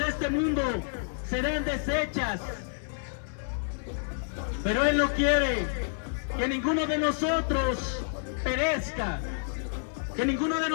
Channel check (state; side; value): silent; right; digital silence